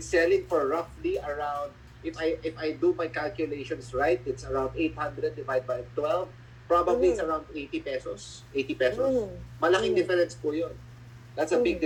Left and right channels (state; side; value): identical; both; correlation 1.00